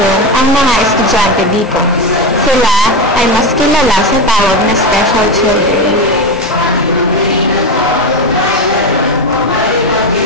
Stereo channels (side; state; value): both; normal; correlation 0.15